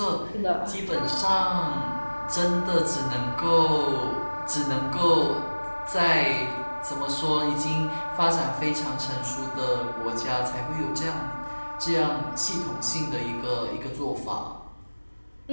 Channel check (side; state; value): both; inverted; correlation -1.00